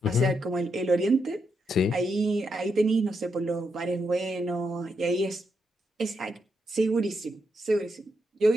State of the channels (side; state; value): both; normal; correlation 0.82